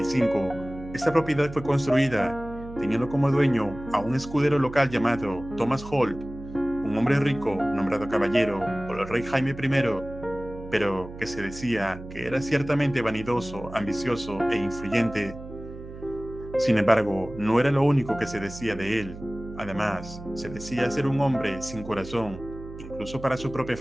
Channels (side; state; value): right; noise; hum, 13 dB below the sound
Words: esta propiedad fue construida, teniendo como dueño a un escudero local llamado Thomas Holt, un hombre rico nombrado caballero por el rey Jaime I, pero que se decía que era ciertamente vanidoso, ambicioso e influyente. Sin embargo, no era lo único que se decía de él. Además, se decía ser un hombre sin corazón, incluso para su propia